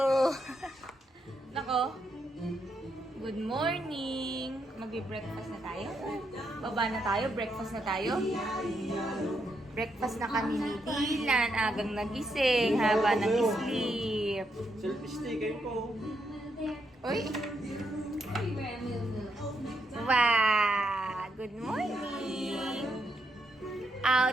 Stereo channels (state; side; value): normal; both; correlation 0.80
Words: Nako, good morning! Magbe-breakfast na tayo. Baba na tayo, breakfast na tayo. Breakfast na kami ni Dylan, agang nagising, haba nag-sleep. Selfie kayo po. Uy! Wow! Good morning!